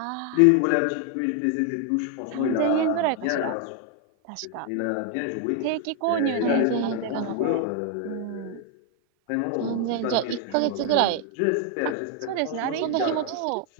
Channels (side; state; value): both; different; correlation 0.00